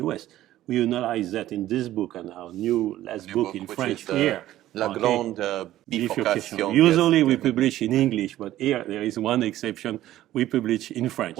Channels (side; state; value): left; quieter; 14.0 dB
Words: we analyze that in this book and our last book in French here. La Grande Bifurcation. Usually we publish in English, but here there is one exception. We publish in French.